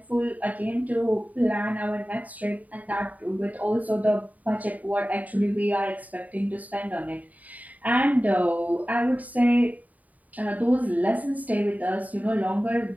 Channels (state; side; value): late; left; 0.073 ms